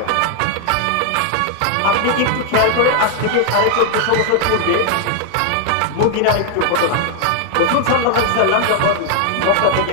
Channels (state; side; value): different; both; correlation 0.00